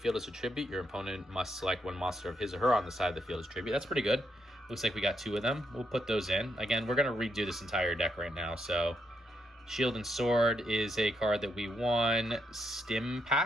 as a tribute. Your opponent must select one monster of his or her on the side of the field as tribute. That's pretty good. Looks like we got 2 of them. We'll put those in. Again, we're going to redo this entire deck right now. So Shield and Sword is a card that we won. Stim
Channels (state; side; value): normal; both; correlation 0.79